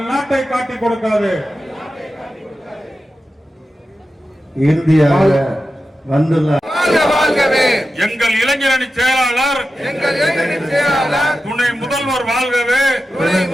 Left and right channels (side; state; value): both; normal; correlation 0.92